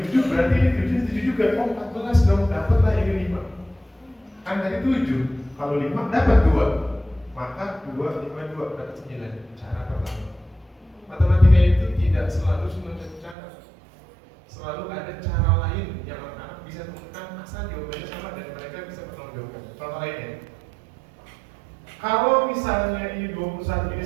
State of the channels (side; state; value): left; drops out; at 13.4 s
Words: 7, berarti ini 7, ini 7 juga. Oh, 14 dong, dapatlah ini 5. Kan tadi 7, kalau 5 dapat 2. Maka 2, 5, 2, dapat 9. Cara pertama. Matematika itu tidak selalu cuma satu cara. Selalu ada cara lain yang anak-anak bisa temukan asal jawabannya sama dan mereka bisa bertanggung jawab. Contoh lainnya, kalau misalnya ini 21, ini